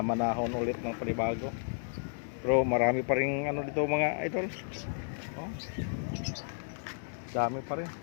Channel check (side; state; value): right; silent; digital silence